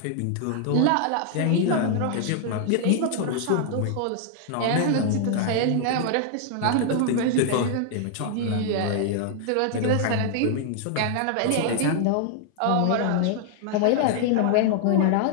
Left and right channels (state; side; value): different; both; correlation 0.00